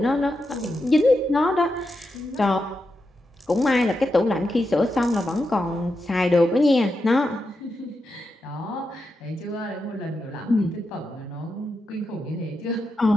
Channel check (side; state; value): both; normal; correlation 0.87